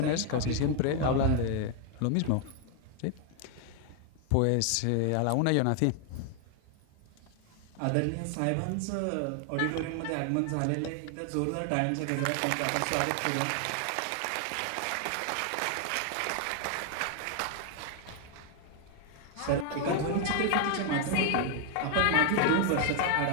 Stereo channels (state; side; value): different; both; correlation 0.00